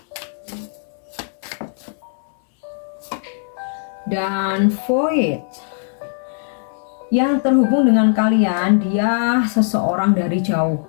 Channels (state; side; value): silent; right; 66 dB below the other